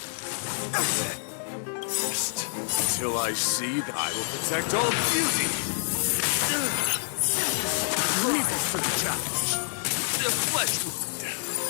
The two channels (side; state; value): right; silent; digital silence